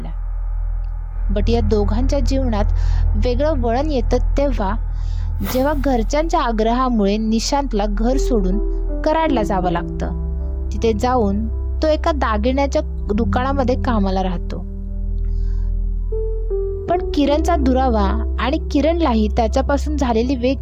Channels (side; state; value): both; identical; correlation 1.00